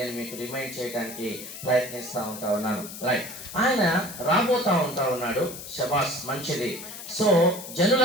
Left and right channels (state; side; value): noise; left; hiss, 11 dB below the sound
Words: మీకు రిమైండ్ చేయడానికి ప్రయత్నిస్తూ ఉన్నాను. రైట్, ఆయన రాబోతా ఉన్నాడు. శబాస్, మంచిది. సో